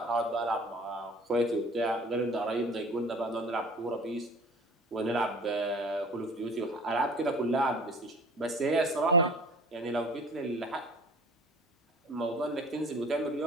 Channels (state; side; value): normal; both; correlation 0.45